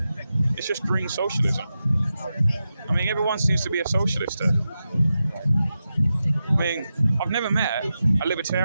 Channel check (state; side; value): inverted; both; correlation -0.91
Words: It's just green socialism. I mean, everyone seems to be a socialist here. I mean, I've never met a